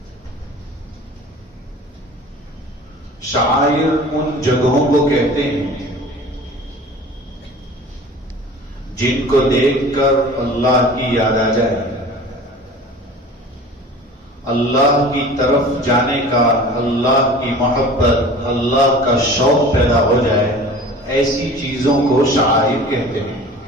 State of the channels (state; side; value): normal; both; correlation 0.41